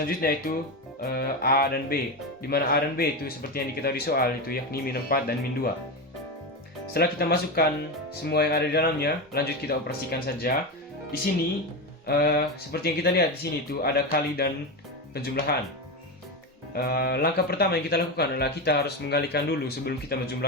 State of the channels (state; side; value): normal; both; correlation 0.16